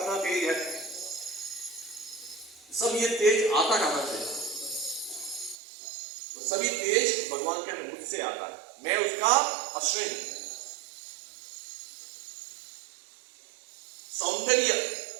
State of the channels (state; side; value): drops out; left; at 5.6 s